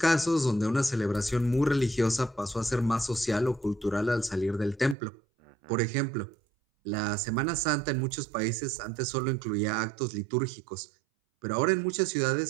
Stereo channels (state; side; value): drops out; left; at 5.0 s